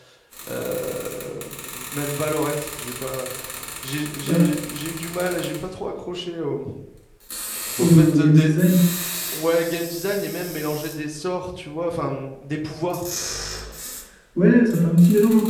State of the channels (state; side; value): identical; both; correlation 1.00